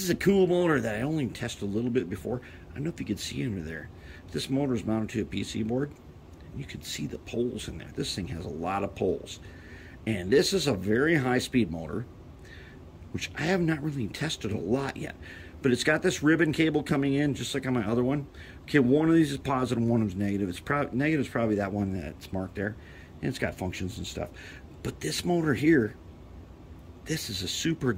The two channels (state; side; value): identical; both; correlation 1.00